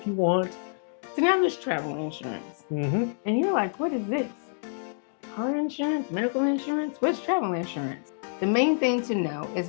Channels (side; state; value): right; silent; digital silence